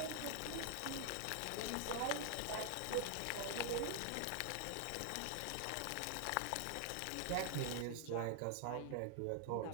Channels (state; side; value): different; both; correlation 0.00